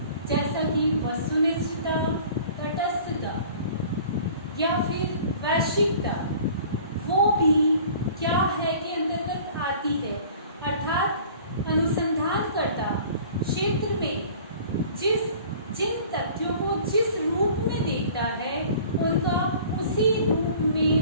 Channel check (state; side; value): inverted; both; correlation -0.47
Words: जैसा कि वस्तुनिष्ठता, तटस्थता या फिर वैश्विकता, वो भी क्या है के अंतर्गत आती है। अर्थात अनुसंधानकर्ता क्षेत्र में जिन तथ्यों को जिस रूप में देखता है उनका उसी रूप